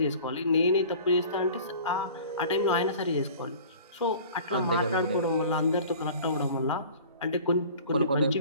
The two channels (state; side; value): inverted; both; correlation -0.44